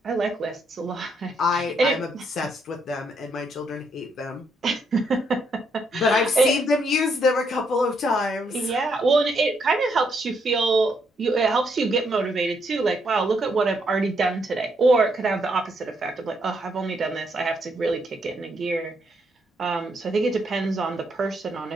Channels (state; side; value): normal; both; correlation 0.75